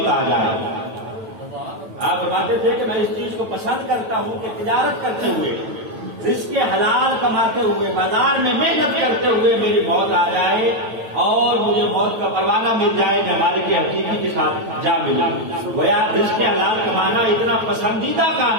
آ جائے۔ آپ فرماتے تھے کہ میں اس چیز کو پسند کرتا ہوں کہ تجارت کرتے ہوئے، رزق حلال کماتے ہوئے، بازار میں محنت کرتے ہوئے میری موت آ جائے اور مجھے موت کا پروانہ مل جائے کہ ہمارے کے حقیقی کے ساتھ جا ملا۔ گویا رزق حلال کمانا اتنا پسندیدہ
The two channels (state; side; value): late; left; 9.1 ms